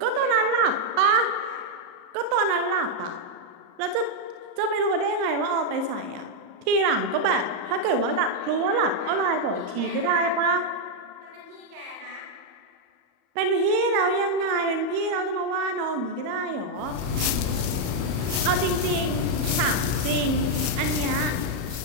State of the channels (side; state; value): left; late; 34 ms